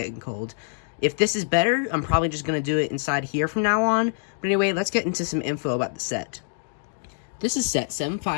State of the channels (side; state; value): right; silent; digital silence